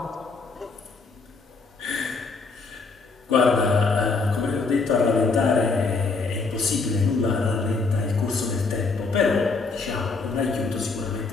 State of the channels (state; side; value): quieter; right; 4.3 dB